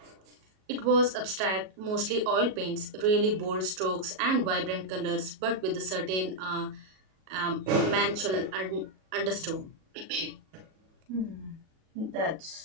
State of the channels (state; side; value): late; left; 37 ms